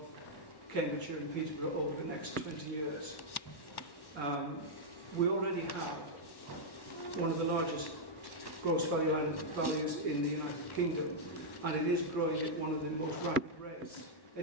Cambridgeshire and Peterborough over the next 20 years. We already have one of the largest gross value added values in the United Kingdom, and it is growing at one of the most rapid rates,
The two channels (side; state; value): right; late; 1.1 ms